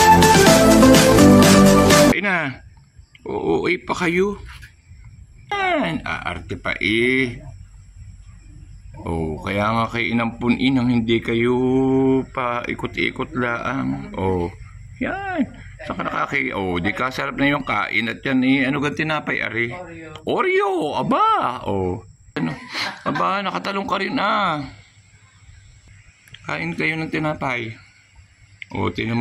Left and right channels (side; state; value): both; identical; correlation 1.00